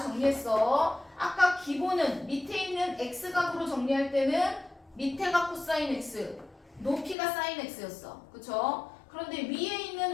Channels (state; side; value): drops out; right; at 7.2 s